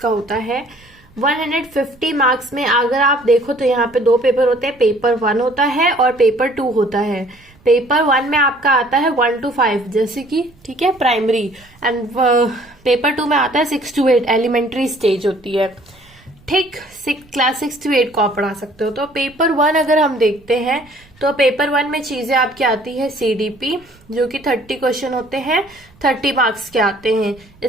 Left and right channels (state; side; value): noise; right; rumble, 29 dB below the sound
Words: होता है। 150 मार्क्स में अगर आप देखो तो यहाँ पे दो पेपर होते हैं, पेपर 1 होता है और पेपर 2 होता है। पेपर 1 में आपका आता है 1 to 5 जैसे कि ठीक है प्राइमरी, एंड पेपर 2 में आता है 6 to 8 एलिमेंट्री स्टेज होती है। ठीक, क्लास 6 to 8 को आप पढ़ा सकते हो। तो पेपर 1 अगर हम देखते हैं तो पेपर 1 में चीजें आपकी आती है सीडीपी जो कि 30 क्वेश्चन होते हैं, 30 मार्क्स के आते हैं।